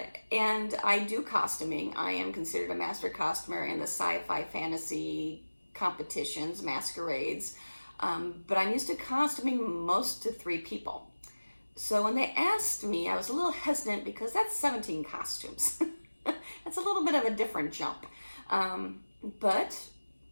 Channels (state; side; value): inverted; both; correlation -1.00